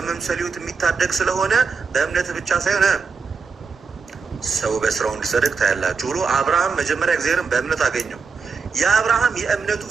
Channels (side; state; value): left; quieter; 5.2 dB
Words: ህይወት የሚታደግ ስለሆነ በእምነት ብቻ ሳይሆን ሰው በስራው እንዲጸድቅ ታያላችሁ ብሎ አብርሃም መጀመሪያ እግዚአብሔርን በእምነት አገኘው። የአብርሃም የእምነቱ